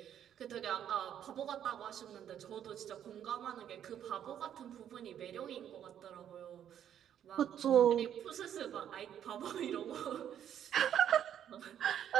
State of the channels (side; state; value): left; quieter; 9.8 dB